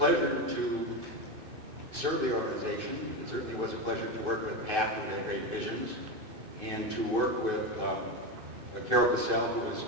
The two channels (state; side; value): late; left; 2.6 ms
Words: to serve the organization. It certainly was a pleasure to work with Pat, who had great visions, and to work with Carol Cassell, who was